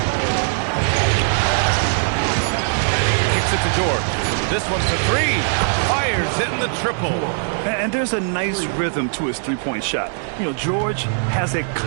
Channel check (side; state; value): left; silent; digital silence